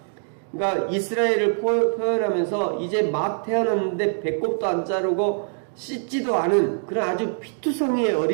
그러니까 이스라엘을 표현하면서 이제 막 태어났는데 배꼽도 안 자르고 씻지도 않은 그런 아주 피투성이의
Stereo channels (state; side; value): silent; left; digital silence